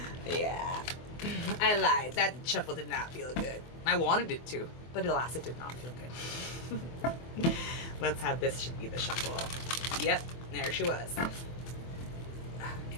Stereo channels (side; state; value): right; late; 24 ms